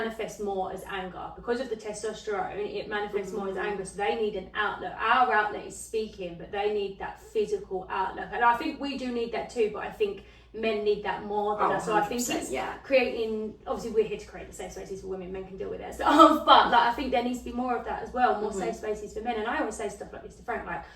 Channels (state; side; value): identical; both; correlation 1.00